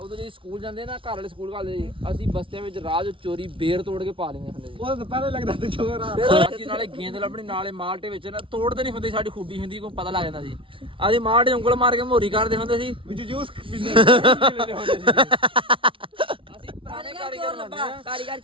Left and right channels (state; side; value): late; left; 0.25 ms